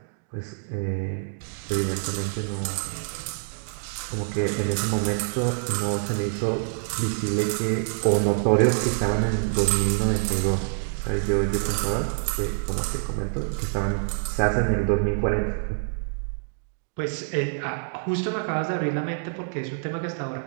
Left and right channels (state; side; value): silent; left; digital silence